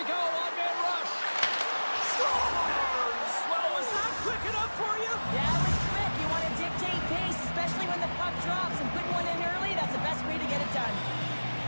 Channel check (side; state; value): both; inverted; correlation -1.00